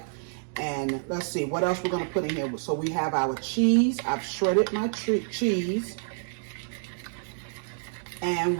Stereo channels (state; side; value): silent; left; digital silence